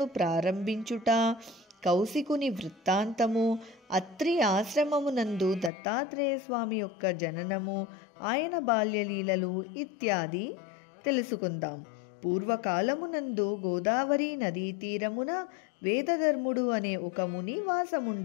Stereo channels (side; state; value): right; drops out; at 5.7 s